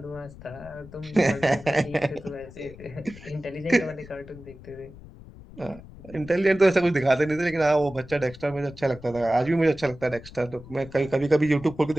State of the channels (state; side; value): noise; left; rumble, 18 dB below the sound